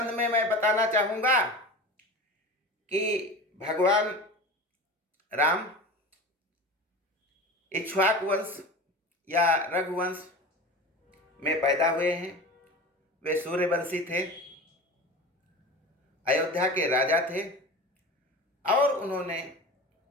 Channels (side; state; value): both; normal; correlation 0.32